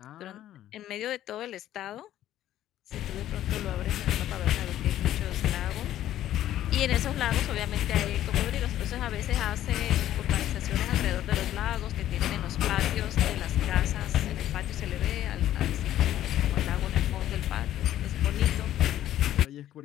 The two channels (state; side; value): quieter; right; 12.6 dB